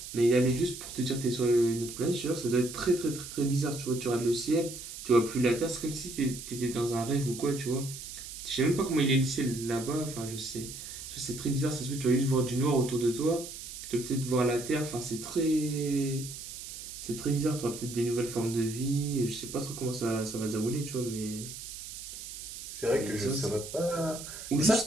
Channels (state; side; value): noise; right; hiss, 10 dB below the sound